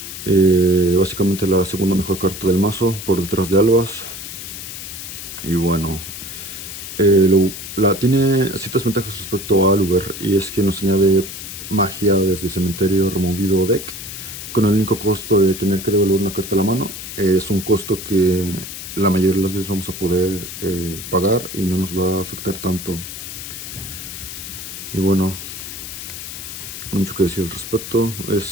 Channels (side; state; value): left; noise; hiss, 9 dB below the sound